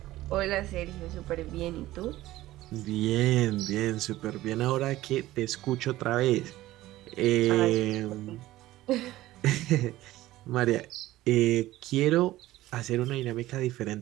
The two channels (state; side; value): quieter; left; 16.2 dB